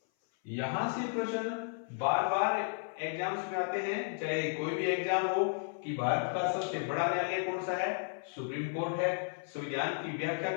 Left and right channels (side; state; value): right; silent; 55 dB below the other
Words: यहां से प्रश्न बार बार एग्जाम्स में आते हैं, चाहे कोई भी एग्जाम हो, कि भारत का सबसे बड़ा न्यायालय कौन सा है? सुप्रीम कोर्ट है। संविधान की व्याख्या